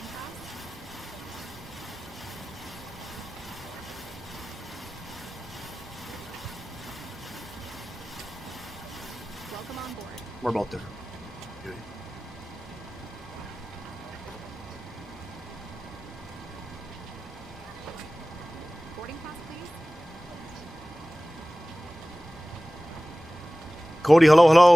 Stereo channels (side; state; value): both; normal; correlation 0.98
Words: pass? Welcome on board. We're about there. Good. Boarding pass, please. Cody, hello,